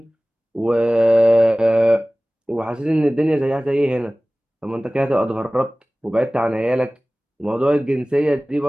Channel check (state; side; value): normal; both; correlation 0.98